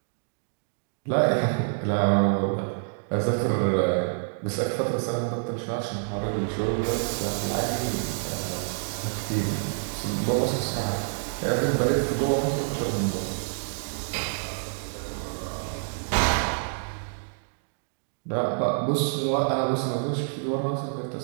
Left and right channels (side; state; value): left; silent; digital silence